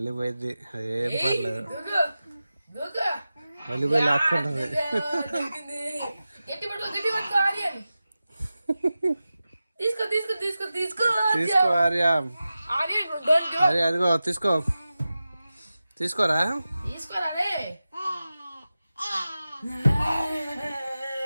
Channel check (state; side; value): inverted; both; correlation -0.94